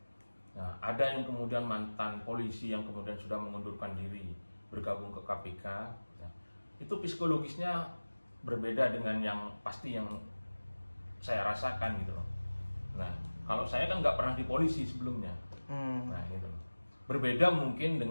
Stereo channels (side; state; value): both; inverted; correlation -1.00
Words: Nah, ada yang kemudian mantan polisi yang kemudian sudah mengundurkan diri bergabung ke KPK. Nah, itu psikologisnya berbeda dengan yang saya rasakan gitu loh. Nah, kalau saya kan nggak pernah di polisi sebelumnya. Nah, gitu. Berbeda mungkin